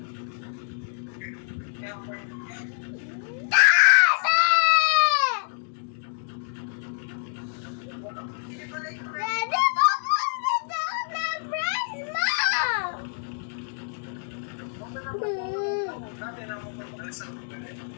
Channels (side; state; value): right; silent; digital silence